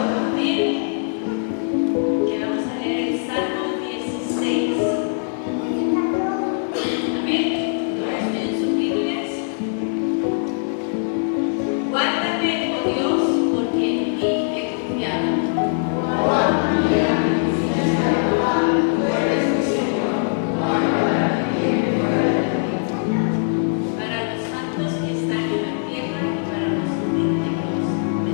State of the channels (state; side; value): silent; right; 60 dB below the other